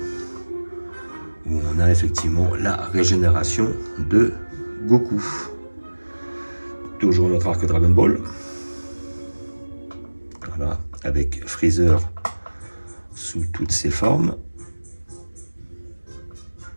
où on a effectivement la régénération de Goku. Toujours notre arc Dragon Ball. Voilà, avec Freezer sous toutes ses formes.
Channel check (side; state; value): both; inverted; correlation -1.00